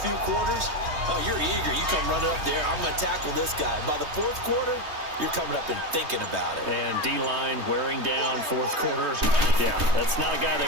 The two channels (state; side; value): late; left; 3.2 ms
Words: few quarters, oh, you're eager. You come running up there, I'm going to tackle this guy. By the 4th quarter, you're coming up and thinking about it. And D-line wearing down 4th quarter. Yeah, that's not a guy